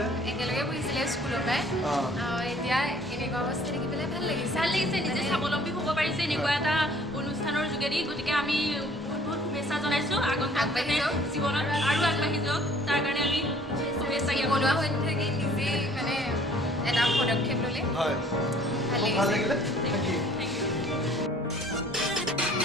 একেলগে পঢ়িছিলে স্কুলৰ পৰাই এতিয়া এনেকুৱা অৱস্থা দেখি পেলাই ভাল লাগিছে নিজে স্বাৱলম্বী হ'ব পাৰিছে এনেকুৱা এটা অনুষ্ঠানৰ যোগেদি গতিকে আমি বহুত শুভেচ্ছা জনাইছোঁ আগন্তুক জীৱনত আৰু আগবাঢ়ি যাওক তাৰ কাৰণে আমি শুভেচ্ছা বনোৱা হৈ থাকি নিজেই মানে এটা পদক্ষেপ ল'লে হয় ভাল ভাল লাগিছে লাগিলে থেংক ইউ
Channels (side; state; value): both; normal; correlation 0.56